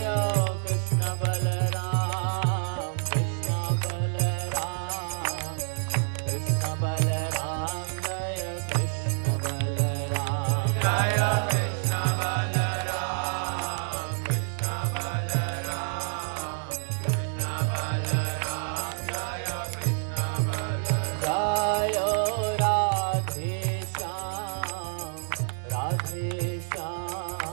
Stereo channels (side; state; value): left; silent; digital silence